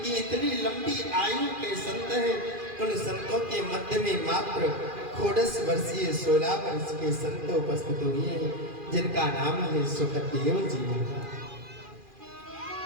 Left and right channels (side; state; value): left; late; 2.4 ms